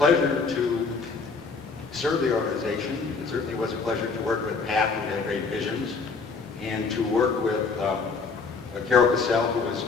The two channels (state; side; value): quieter; right; 4.6 dB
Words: to serve the organization. It certainly was a pleasure to work with Pat, who had great visions, and to work with Carol Cassell, who was